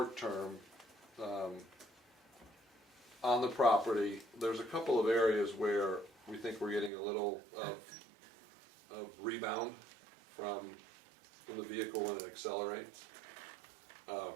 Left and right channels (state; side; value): drops out; left; at 6.9 s